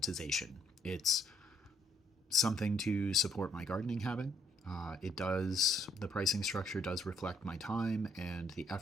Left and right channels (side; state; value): both; normal; correlation 0.68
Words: It's something to support my gardening habit. The pricing structure does reflect my time and the